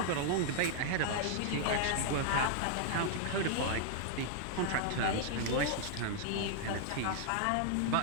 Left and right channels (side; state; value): both; different; correlation -0.01